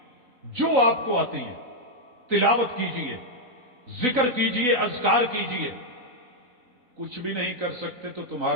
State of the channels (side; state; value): left; late; 3.9 ms